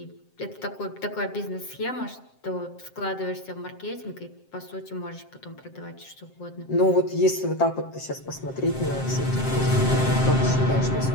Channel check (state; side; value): late; right; 7.6 ms